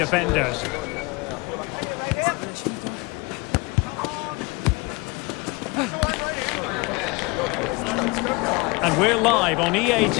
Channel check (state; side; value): quieter; right; 26.9 dB